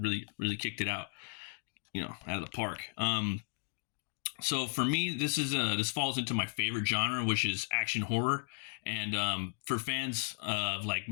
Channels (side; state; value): right; silent; digital silence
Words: kicked it out, out of the park. So for me, this falls into my favorite genre, which is action horror. And for fans of like